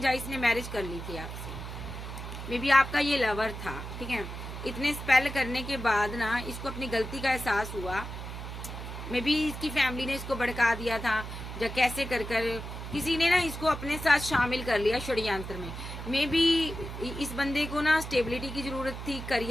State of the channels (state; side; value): noise; right; hum, 8 dB below the sound